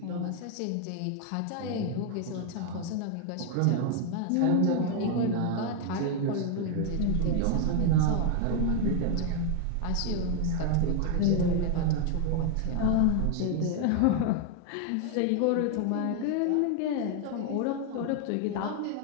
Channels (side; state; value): both; different; correlation 0.01